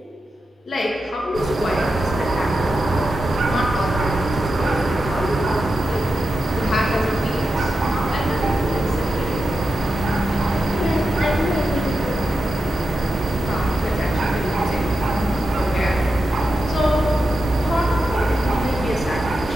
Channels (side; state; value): both; normal; correlation 0.89